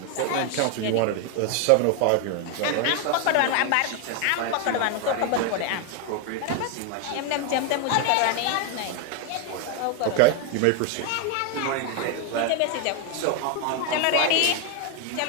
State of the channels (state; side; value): different; both; correlation 0.01